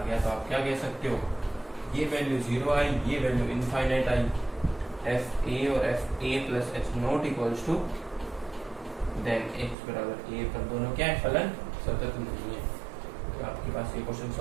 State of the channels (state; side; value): drops out; left; at 9.8 s